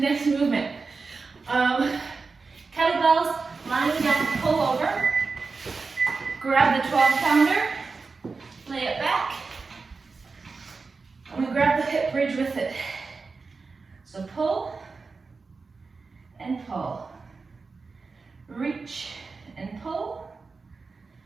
movement. Kettlebells, lying down, pull over. Grab the 12-pounder, lay it back. I'm going to grab the hip bridge with it. So pull and pull. Reach and pull.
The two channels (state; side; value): quieter; left; 4.4 dB